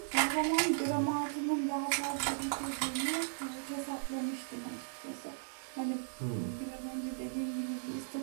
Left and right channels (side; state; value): left; silent; digital silence